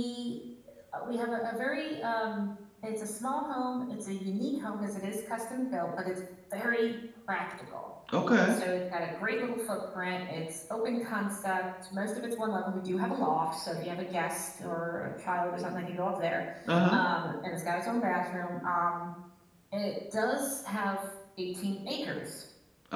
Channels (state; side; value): identical; both; correlation 1.00